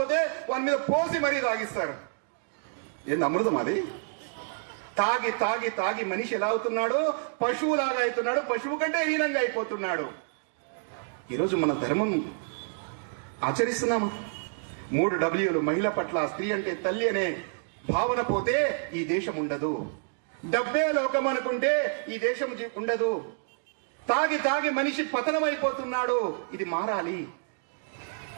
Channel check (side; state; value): left; silent; digital silence